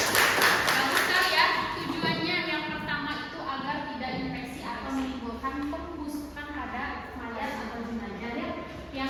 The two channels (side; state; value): both; identical; correlation 1.00